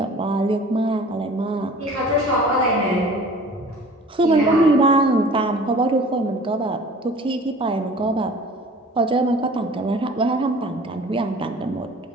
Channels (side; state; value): both; normal; correlation 0.46